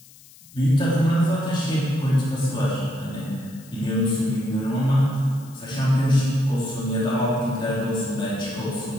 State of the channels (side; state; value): left; noise; hiss, 23 dB below the sound